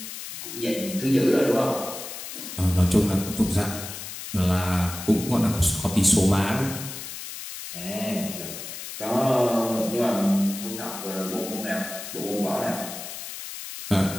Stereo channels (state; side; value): noise; left; hiss, 9 dB below the sound